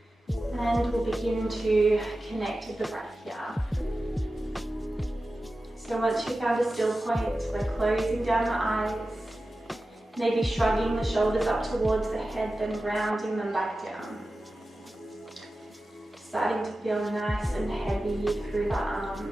And we'll begin to connect with the breath here. So once you've found a still point, we're closing down the eyes, maybe shrugging the shoulders up towards the head, then rounding them back down. Starting to feel nice and heavy through the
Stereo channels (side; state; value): both; normal; correlation 0.94